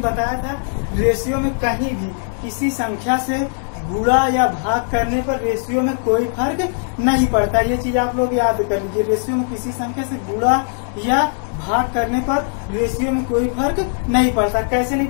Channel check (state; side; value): silent; right; 66 dB below the other